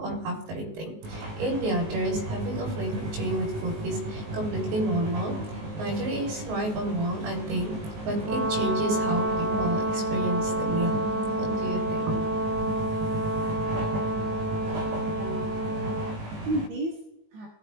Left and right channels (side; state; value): left; late; 19 ms